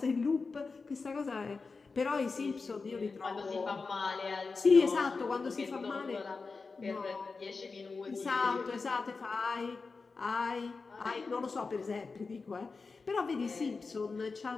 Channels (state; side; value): quieter; right; 4.4 dB